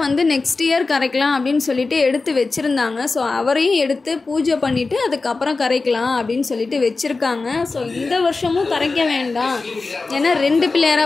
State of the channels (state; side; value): quieter; right; 3.8 dB